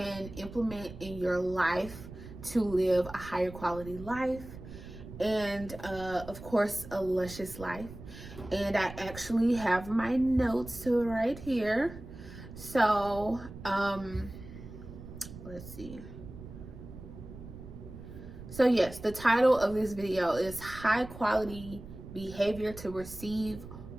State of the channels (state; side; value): noise; right; rumble, 14 dB below the sound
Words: implement in your life to live a higher quality life and of course a luscious life. And I actually have my notes right here. So let's see. So yes, the title of this video is high quality behavior to receive